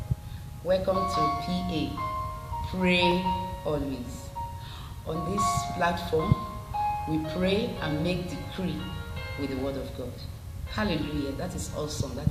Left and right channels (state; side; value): identical; both; correlation 1.00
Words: Welcome to PA, Pray Always. On this platform, we pray and make decree with the word of God. Hallelujah, that is awesome,